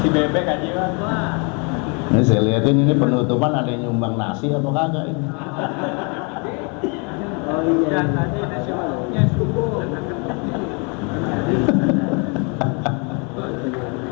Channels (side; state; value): right; quieter; 33.8 dB